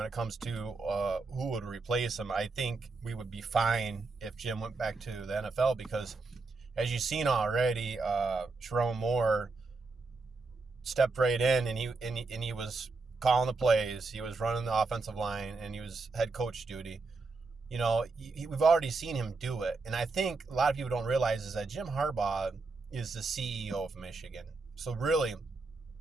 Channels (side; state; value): left; quieter; 3.9 dB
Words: it comes to who would replace him, I think we would be fine if Jim went back to the NFL because, as you've seen already, Sharon Moore stepped right in and he was calling the plays, he was running the offensive line, and he was head coach duty. You know, we've already seen him do it. And I think a lot of people don't realize is that Jim Harbaugh is the CEO of Michigan. So really,